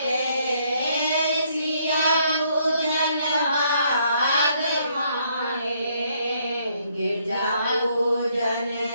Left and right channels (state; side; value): inverted; both; correlation -0.69